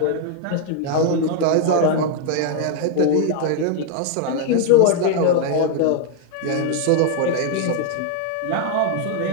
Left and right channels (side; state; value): both; different; correlation 0.00